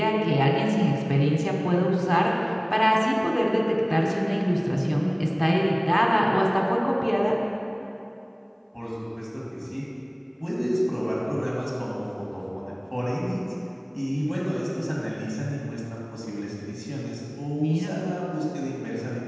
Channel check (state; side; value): identical; both; correlation 1.00